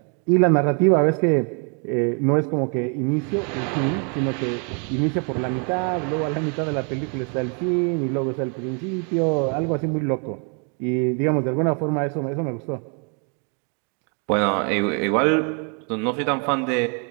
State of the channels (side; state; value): left; quieter; 38.8 dB